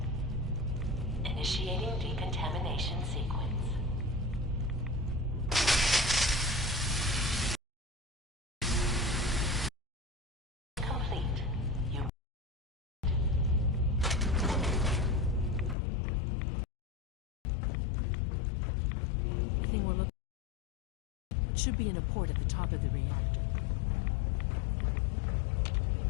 Initiating decontamination sequence. Complete. You should be in a port at the top of the reactor.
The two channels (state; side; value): drops out; right; at 15.8 s